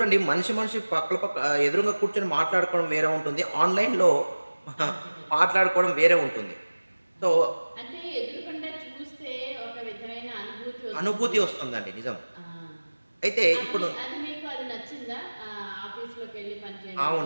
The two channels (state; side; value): inverted; both; correlation -1.00